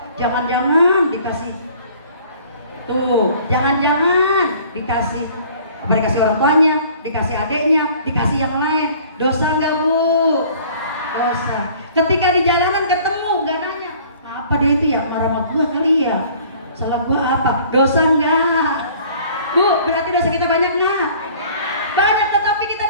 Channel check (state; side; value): inverted; both; correlation -0.52